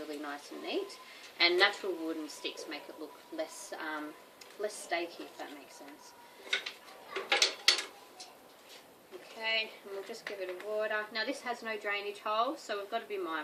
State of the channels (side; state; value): both; identical; correlation 1.00